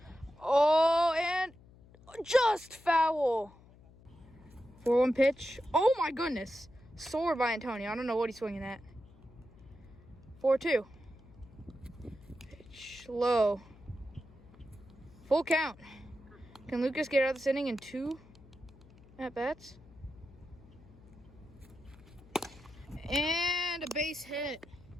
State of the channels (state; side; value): noise; left; hum, 23 dB below the sound